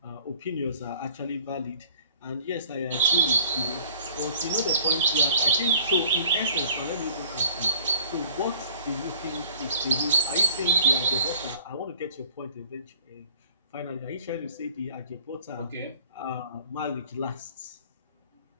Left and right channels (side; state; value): both; inverted; correlation -0.50